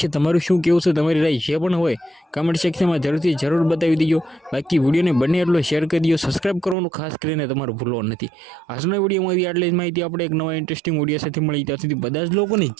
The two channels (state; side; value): drops out; left; at 6.8 s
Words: तमारुं शुं कहेवुं छे तमारी राय जे पण होय कमेंट सेक्शन में जरूर बतावी दीजो। बाकी विडियो ने बने एटलो शेर करी दीजो सब्सक्राइब करवानुं खास करीने तमारुं भूलवानुं नथी। आजना विडियोमां आटली ज माहिती आपणे एक नवा इंटरेस्टिंग विडियो साथे मळीए त्यां सुधी बधा ज लोकोने